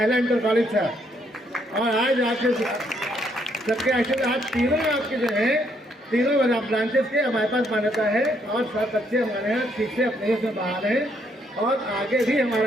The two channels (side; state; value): both; normal; correlation 0.72